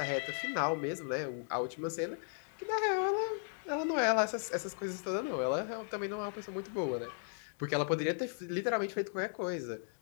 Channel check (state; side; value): silent; right; digital silence